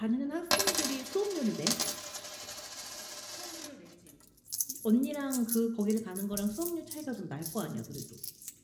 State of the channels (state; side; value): identical; both; correlation 1.00